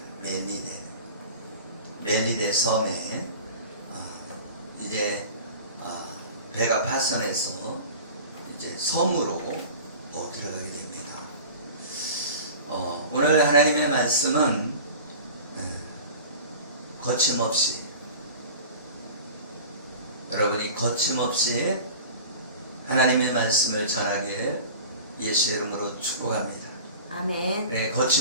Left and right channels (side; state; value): both; inverted; correlation -0.38